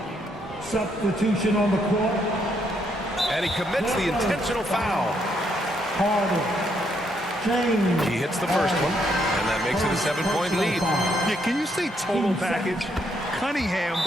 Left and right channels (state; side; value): normal; both; correlation 0.74